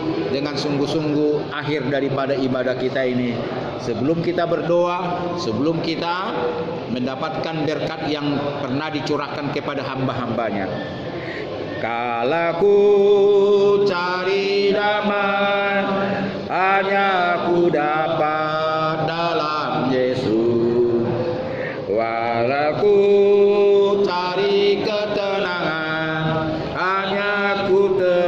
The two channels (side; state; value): both; identical; correlation 1.00